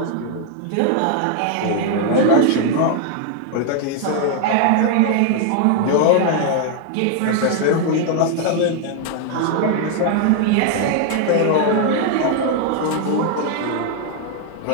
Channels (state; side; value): different; both; correlation 0.00